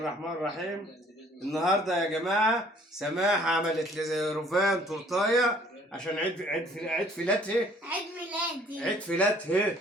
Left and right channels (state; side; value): normal; both; correlation 0.57